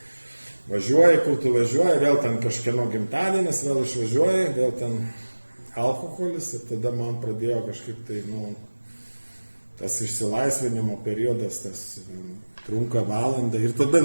Važiuoji, kur tu važiuoji, vėl ten kažkieno gimtadienis, vėl išvažiuoji, vėl ten alkoholis ir tada man pradėjo kažkaip tai, tas išsilaisvinimo periodas, tas trunka valandą ir tada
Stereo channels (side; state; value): both; inverted; correlation -1.00